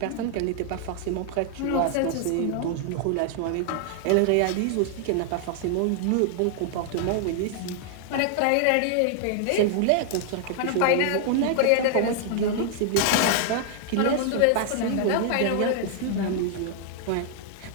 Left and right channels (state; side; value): different; both; correlation 0.00